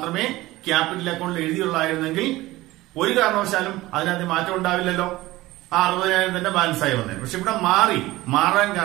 ക്യാപിറ്റൽ അക്കൗണ്ടിൽ എഴുതിയുള്ളായിരുന്നെങ്കിൽ ഒരു കാരണവശാലും അതിനകത്ത് മാറ്റം ഉണ്ടാവില്ലല്ലോ. ആ 60,000 തന്നെ ബാലൻസ് ആയി വന്നേ. പക്ഷെ ഇവിടെ മാറാൻ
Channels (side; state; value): left; quieter; 18.3 dB